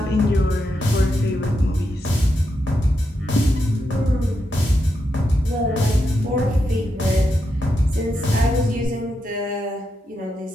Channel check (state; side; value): normal; both; correlation 0.84